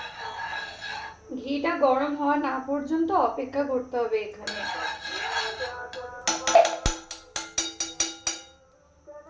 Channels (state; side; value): identical; both; correlation 1.00